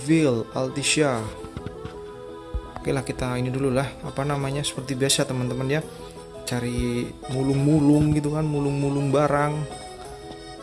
Altissia. Oke lah, kita ini dulu lah, apa namanya, seperti biasa teman-teman ya, cari mulung-mulung gitu kan, mulung-mulung barang.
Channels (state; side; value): identical; both; correlation 1.00